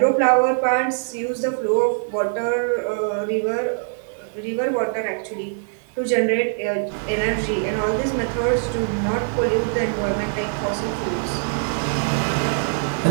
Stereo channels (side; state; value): left; silent; 64 dB below the other